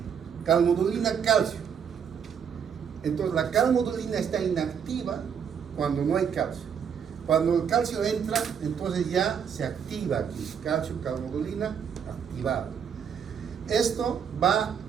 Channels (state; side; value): quieter; left; 7.5 dB